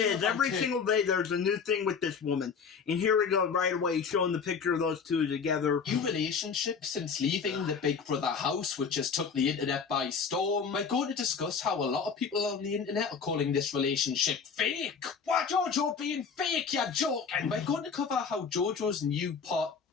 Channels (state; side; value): quieter; right; 5.9 dB